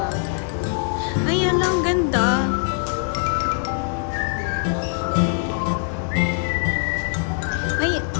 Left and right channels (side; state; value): right; silent; 64 dB below the other